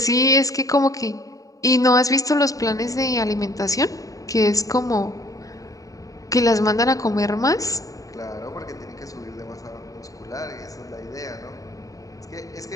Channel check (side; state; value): right; late; 0.16 ms